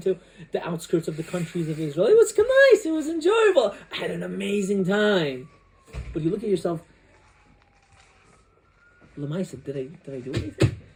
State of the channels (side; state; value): both; identical; correlation 1.00